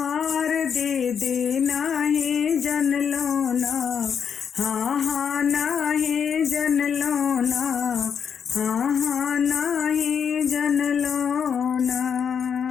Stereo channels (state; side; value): quieter; right; 7.2 dB